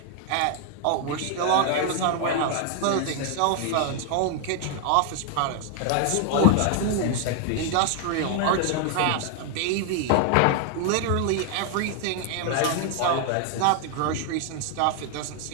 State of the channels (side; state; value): both; different; correlation 0.00